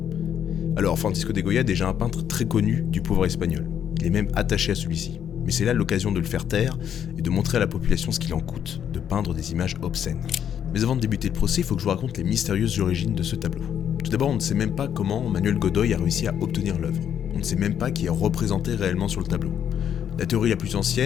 Alors, Francisco de Goya est déjà un peintre très connu du pouvoir espagnol. Il est même attaché à celui-ci. Mais c'est là l'occasion de le faire taire et de montrer à la population ce qu'il en coûte de peindre des images obscènes. Mais avant de débuter le procès, il faut que je vous raconte les mystérieuses origines de ce tableau. Tout d'abord, on ne sait même pas comment Manuel Godoy a réussi à obtenir l'œuvre. On ne sait même pas qui est représenté réellement sur le tableau. La théorie la plus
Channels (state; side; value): quieter; right; 9.1 dB